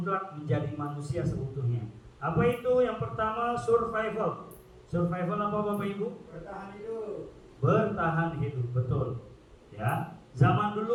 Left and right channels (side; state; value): both; identical; correlation 1.00